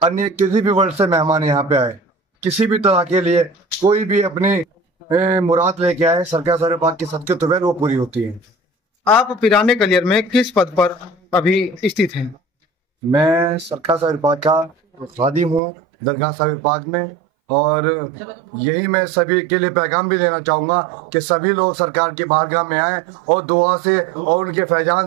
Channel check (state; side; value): drops out; left; at 15.6 s